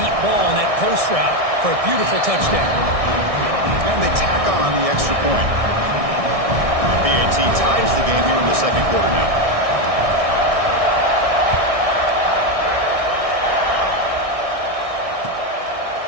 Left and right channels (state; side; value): late; left; 1.6 ms